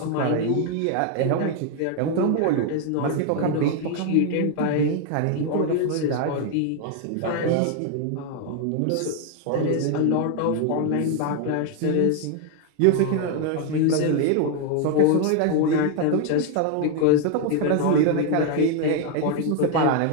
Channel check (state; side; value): different; both; correlation 0.01